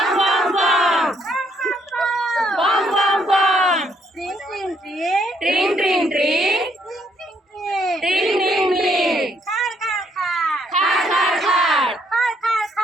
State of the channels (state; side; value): normal; both; correlation 0.70